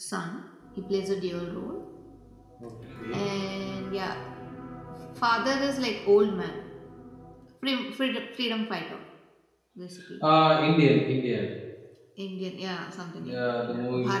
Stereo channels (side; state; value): both; identical; correlation 1.00